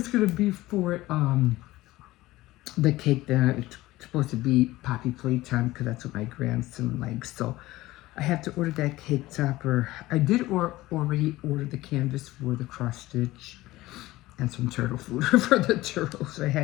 gonna be for the cake that it's supposed to be Poppy playtime, because that's what my grandson likes. So I have to order that cake topper. I did already order the canvas for the cross stitch and some turtle food for the turtles. So I had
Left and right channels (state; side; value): quieter; right; 17.8 dB